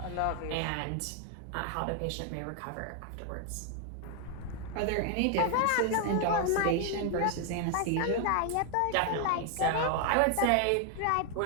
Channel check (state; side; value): different; both; correlation 0.00